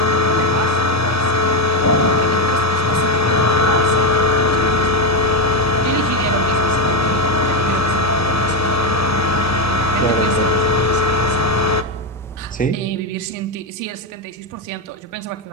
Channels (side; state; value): both; normal; correlation 0.07